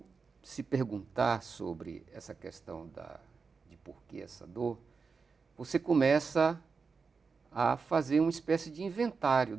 se perguntar sobre essa questão de por que essa dor, você começa a fazer uma espécie de inventário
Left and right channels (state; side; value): quieter; left; 4.9 dB